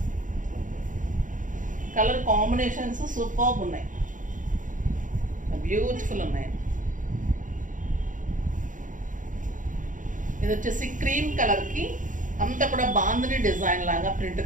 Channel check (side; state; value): left; late; 0.38 ms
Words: కలర్ కాంబినేషన్స్ సూపర్బ్ ఉన్నాయి, బ్యూటిఫుల్ ఉన్నాయి. ఇది వచ్చేసి క్రీమ్ కలర్కి అంతా కూడా బాందిని డిజైన్ లాగా ప్రింట్